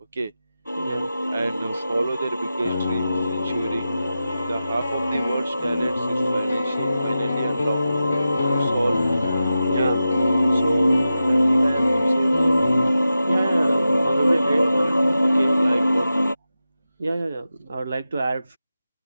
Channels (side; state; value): both; inverted; correlation -0.92